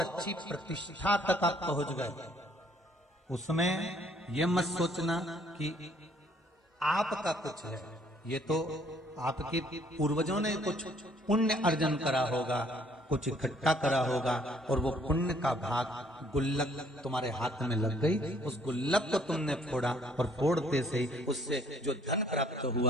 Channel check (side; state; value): both; normal; correlation 0.62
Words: प्रतिष्ठा तक आप पहुंच गए। उसमें यह मत सोचना कि आपका कुछ है, ये तो आपके पूर्वजों ने कुछ पुण्य अर्जन करा होगा, कुछ इकट्ठा करा होगा, और वो पुण्य का भाग गुल्लक तुम्हारे हाथ में लग गई, उस गुल्लक को तुमने फोड़ा, और फोड़ते से ही उससे जो धन प्राप्त